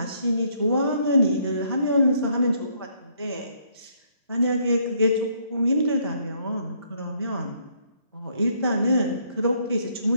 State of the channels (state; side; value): inverted; both; correlation -0.68